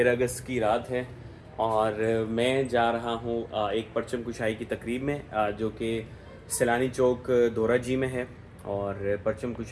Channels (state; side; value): identical; both; correlation 1.00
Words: اگست کی رات ہے، اور میں جا رہا ہوں ایک پرچم کشائی کی تقریب میں جو کہ سیلانی چوک دورہ جی میں ہے. اور پرچم